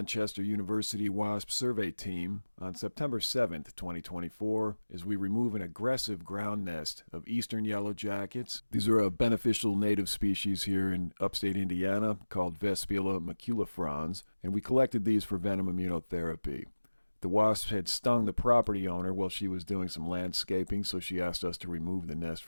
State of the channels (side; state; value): both; inverted; correlation -1.00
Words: University Wasp Survey Team on September 7th, 2024, as we remove an aggressive ground nest of Eastern Yellowjackets. These are a beneficial native species here in upstate Indiana called Vespula maculifrons, and we collected these for Venom Immunotherapy. The wasps had stung the property owner while she was doing some landscaping, so she asked us to remove the nest